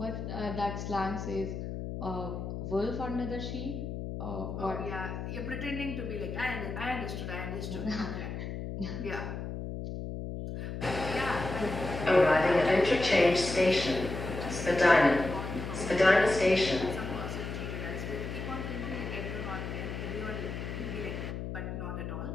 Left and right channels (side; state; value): left; noise; hum, 6 dB below the sound